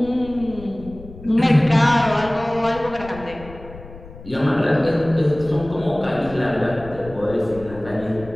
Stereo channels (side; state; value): left; noise; rumble, 16 dB below the sound